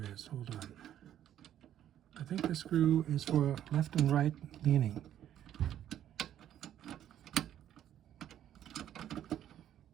Hold on. I think this screw is for left and right leaning.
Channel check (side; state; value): left; quieter; 11.1 dB